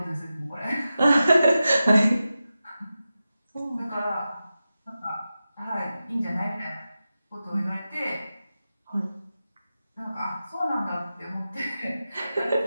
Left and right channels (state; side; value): inverted; both; correlation -0.93